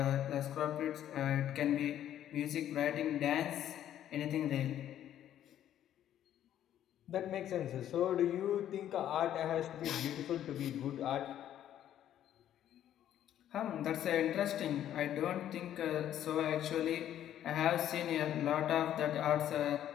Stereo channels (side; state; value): right; quieter; 11.2 dB